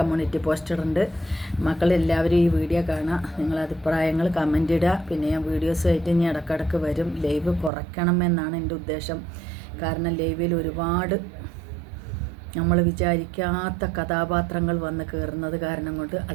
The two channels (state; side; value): drops out; left; at 7.7 s